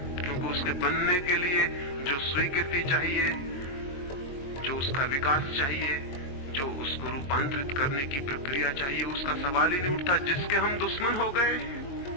क्योंकि उसके बनने के लिए जो स्वीकृति चाहिए, जो उसका विकास चाहिए, जो उसको रूपांतरित करने की प्रक्रिया चाहिए, उसका सवाल ही नहीं उठता। जिसके हम दुश्मन हो गए,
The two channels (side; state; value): right; late; 22 ms